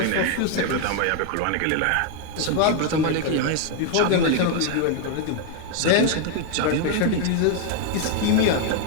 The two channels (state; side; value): different; both; correlation 0.01